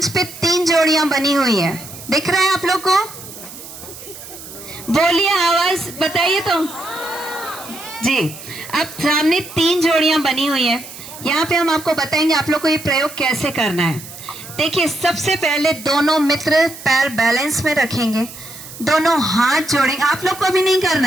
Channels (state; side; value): noise; right; hiss, 15 dB below the sound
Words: पे 3 जोड़ियां बनी हुई हैं, दिख रहा है आप लोग को? बोलिए, आवाज बताइए तो जी। अब सामने 3 जोड़ियां बनी हुई हैं। यहाँ पे हम आपको बताएंगे आप लोग को ये प्रयोग कैसे करना है। देखिए, सबसे पहले दोनों मित्र पैर बैलेंस में रखेंगे, दोनों हाथ जोड़ेंगे। आप लोग को अभी नहीं करना